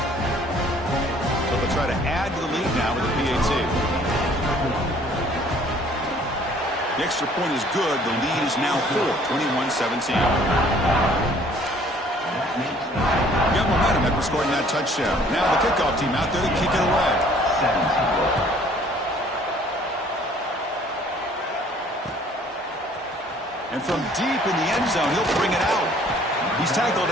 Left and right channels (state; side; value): normal; both; correlation 0.57